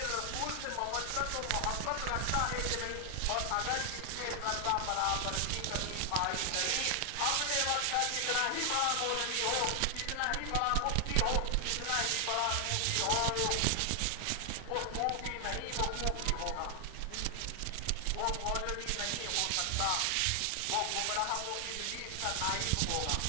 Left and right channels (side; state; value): both; different; correlation 0.00